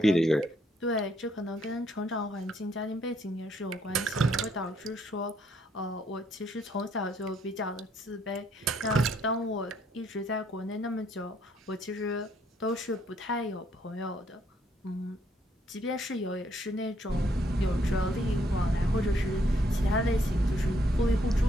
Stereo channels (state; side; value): normal; both; correlation 0.70